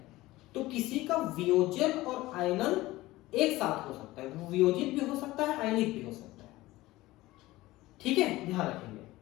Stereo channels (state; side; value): quieter; right; 18.2 dB